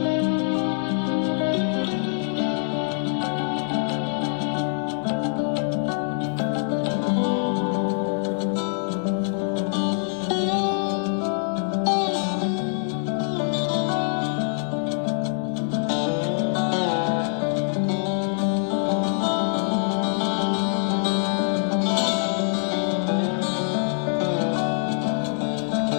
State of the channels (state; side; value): silent; right; digital silence